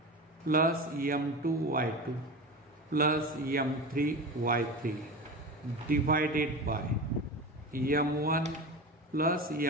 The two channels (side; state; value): both; normal; correlation 0.27